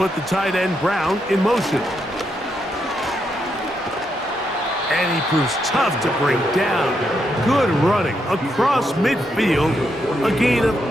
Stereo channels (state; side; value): normal; both; correlation 0.80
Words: the tight end Brown in motion. And he proves tough to bring down. Good running across midfield. A gain of